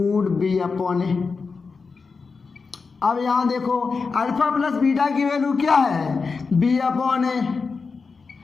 B upon A. अब यहाँ देखो alpha plus beta की value क्या है, B upon A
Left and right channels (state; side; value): quieter; right; 4.7 dB